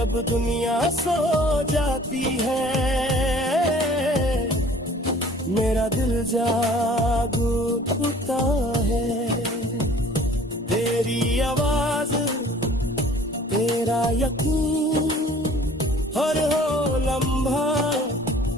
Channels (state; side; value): normal; both; correlation 0.51